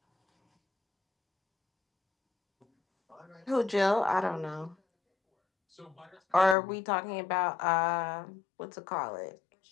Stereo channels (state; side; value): drops out; right; at 6.6 s